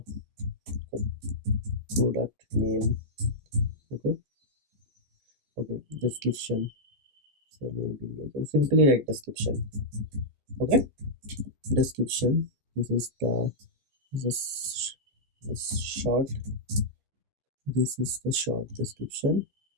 product name. Okay, okay, description. So maybe I can simply write description. Okay, description. This is the this short. This is the short description.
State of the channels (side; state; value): left; late; 15 ms